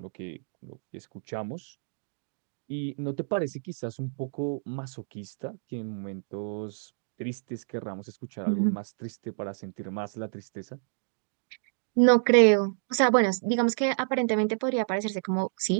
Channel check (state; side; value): silent; left; digital silence